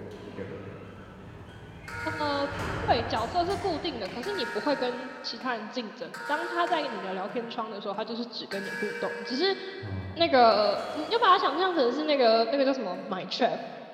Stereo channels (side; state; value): both; identical; correlation 1.00